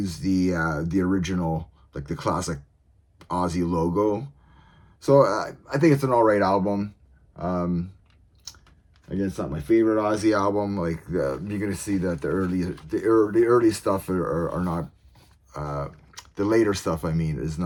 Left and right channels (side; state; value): both; identical; correlation 1.00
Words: the original, like the classic Ozzy logo. So I think it's an alright album. Um, Again, it's not my favorite Ozzy album. Like you're gonna see that the early stuff are not the later stuff. I mean, is